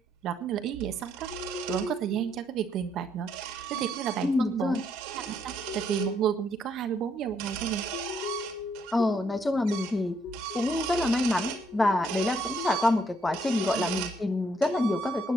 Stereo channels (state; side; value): normal; both; correlation 0.72